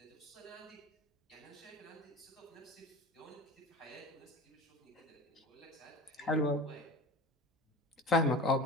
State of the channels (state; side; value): normal; both; correlation 0.35